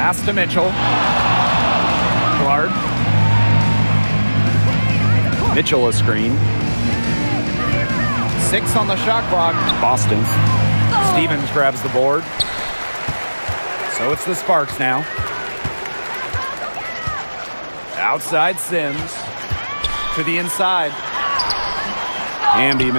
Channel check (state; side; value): inverted; both; correlation -1.00